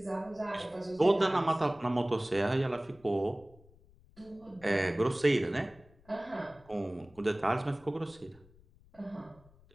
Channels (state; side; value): noise; left; rumble, 26 dB below the sound